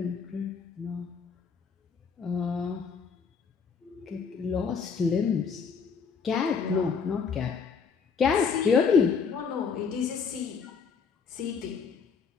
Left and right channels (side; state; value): right; quieter; 5.8 dB